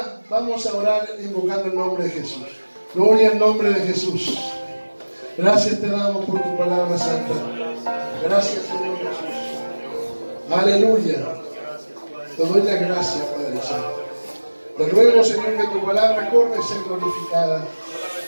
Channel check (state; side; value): inverted; both; correlation -1.00